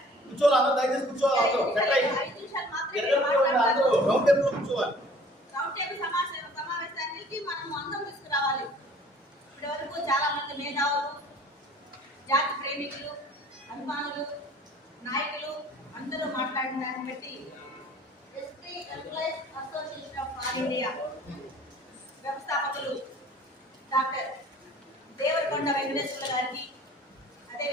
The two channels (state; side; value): normal; both; correlation 0.51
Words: దయచేసి కూర్చోవాలి. 5 నిమిషాలు మాత్రమే రౌండ్ టేబుల్ సమావేశానికి మనం అందరం తీసుకురావాలి. ఇప్పటి వరకు చాలా మంది మేధావులు, జాతి ప్రేమికులు, అభిమానులు, నాయకులు అందరూ మాట్లాడిన దాన్ని బట్టి SP employees association of all India వ్యవస్థాపకులు డాక్టర్ దేవరకొండ వెంకటేశ్వర గారికి,